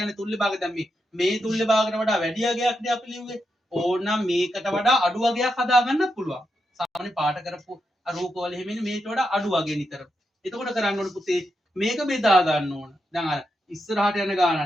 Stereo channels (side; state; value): both; normal; correlation 0.85